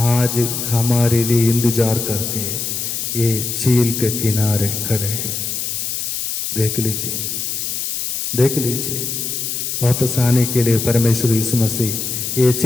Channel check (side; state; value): left; noise; hiss, 3 dB below the sound